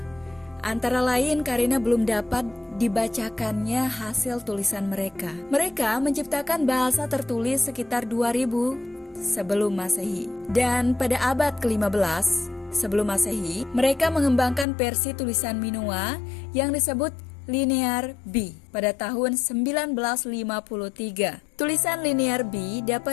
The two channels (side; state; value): right; drops out; at 14.7 s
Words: antara lain karena belum dapat dibacakannya hasil tulisan mereka. Mereka menciptakan bahasa tertulis sekitar 2000 sebelum Masehi. Dan pada abad ke-15 sebelum Masehi, mereka mengembangkan versi tulisan Minoa yang disebut Linear B pada tahun 1953. Tulisan Linear B